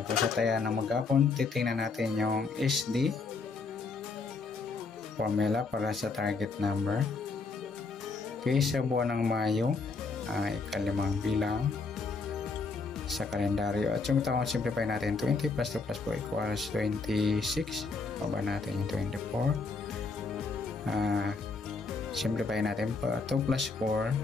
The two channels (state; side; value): quieter; right; 4.2 dB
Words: po, sa taya ng maghapon, titingnan natin yung SD formula para sa target number. Okay, sa buwan ng Mayo, ikalimang bilang sa kalendaryo. At yung taon, simplify natin 20 plus 2 plus 4 equals 26. Baba natin yung 24. Simplify natin pa 2 plus 4